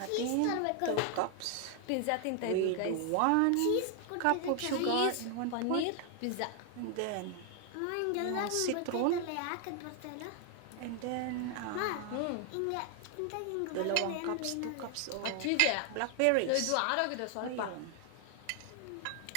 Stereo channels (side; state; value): both; different; correlation 0.00